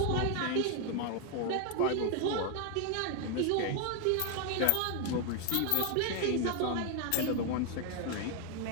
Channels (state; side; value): different; both; correlation 0.01